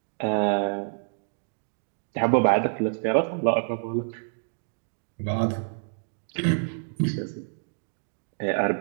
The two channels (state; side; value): silent; left; digital silence